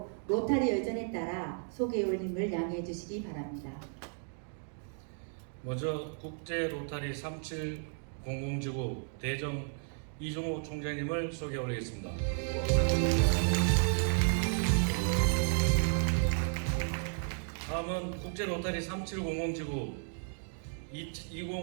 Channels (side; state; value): left; silent; 55 dB below the other